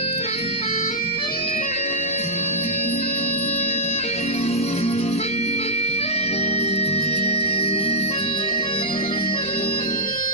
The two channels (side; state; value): right; noise; rumble, 24 dB below the sound